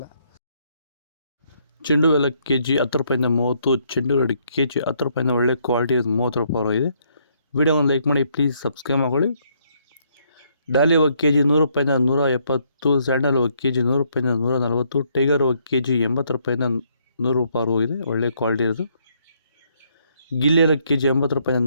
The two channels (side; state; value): both; inverted; correlation -0.71